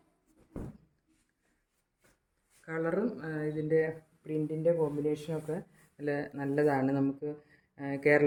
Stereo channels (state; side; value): identical; both; correlation 1.00